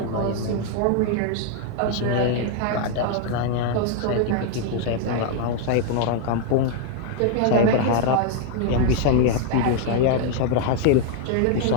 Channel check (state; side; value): different; both; correlation 0.00